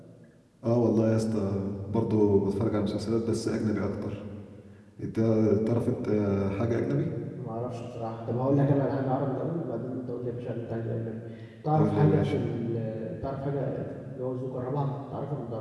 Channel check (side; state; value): both; identical; correlation 1.00